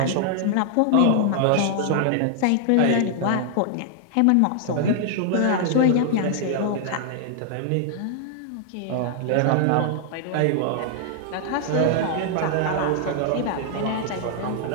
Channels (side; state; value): both; different; correlation 0.00